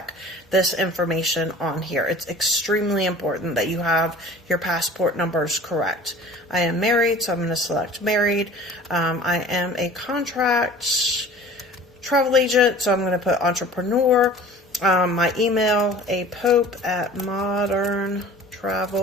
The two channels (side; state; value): both; normal; correlation 0.45